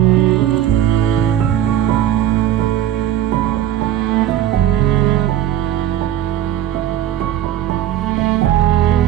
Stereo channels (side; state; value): left; quieter; 11.7 dB